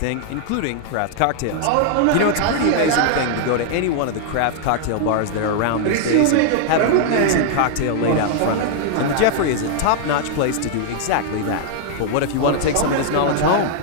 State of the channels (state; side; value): different; both; correlation 0.00